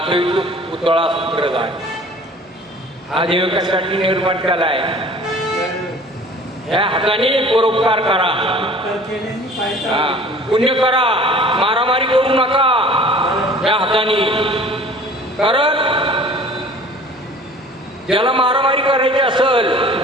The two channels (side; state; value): both; normal; correlation 0.47